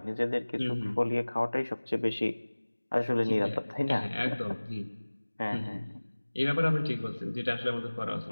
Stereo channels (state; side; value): inverted; both; correlation -1.00